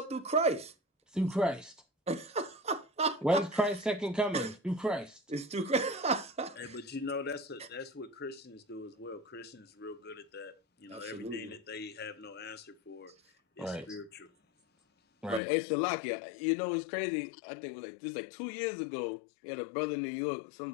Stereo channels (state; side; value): drops out; right; at 15.4 s